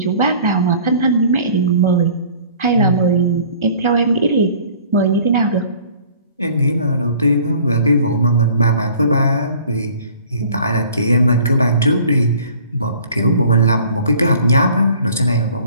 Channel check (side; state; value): both; inverted; correlation -0.51